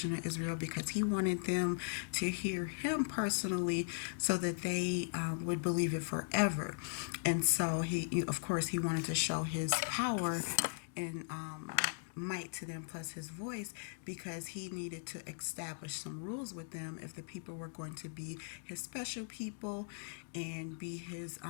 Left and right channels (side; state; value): right; silent; digital silence